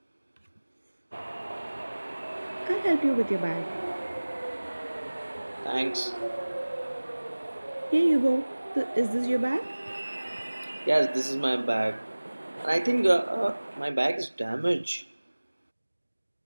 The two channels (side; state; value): both; inverted; correlation -1.00